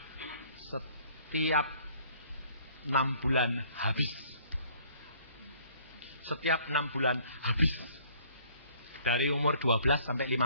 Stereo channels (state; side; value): inverted; both; correlation -0.58